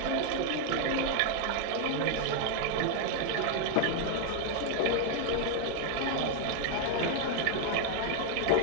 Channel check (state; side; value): different; both; correlation 0.00